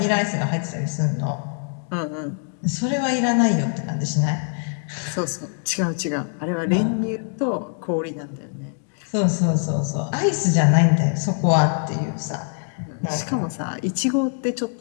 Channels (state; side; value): silent; right; 63 dB below the other